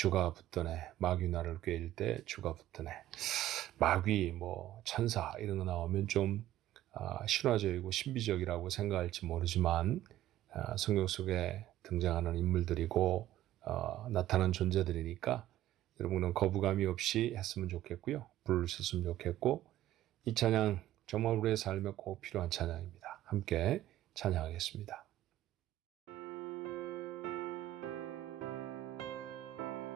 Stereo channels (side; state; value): left; quieter; 13.8 dB